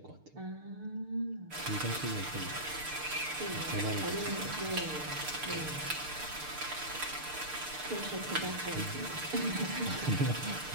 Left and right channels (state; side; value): late; left; 6.6 ms